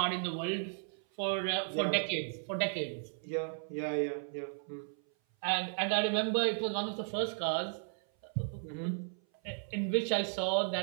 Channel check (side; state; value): left; silent; 54 dB below the other